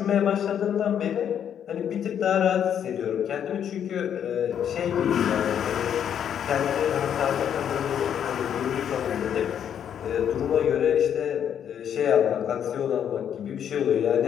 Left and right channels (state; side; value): quieter; right; 9.0 dB